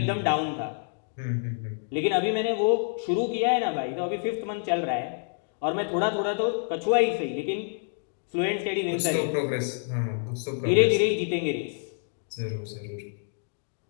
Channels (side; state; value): right; silent; digital silence